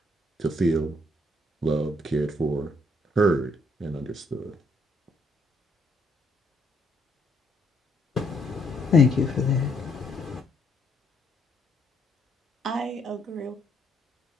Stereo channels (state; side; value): normal; both; correlation 0.70